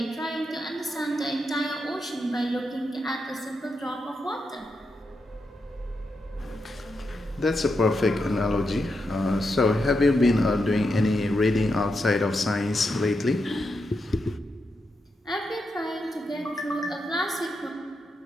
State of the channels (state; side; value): normal; both; correlation 0.85